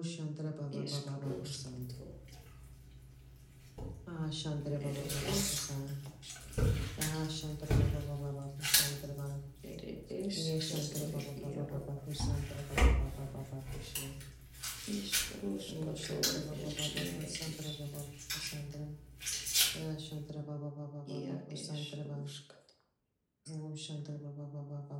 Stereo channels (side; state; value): both; identical; correlation 1.00